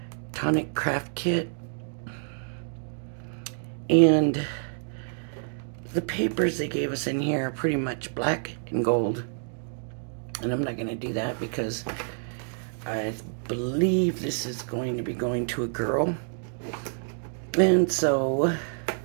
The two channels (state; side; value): silent; left; digital silence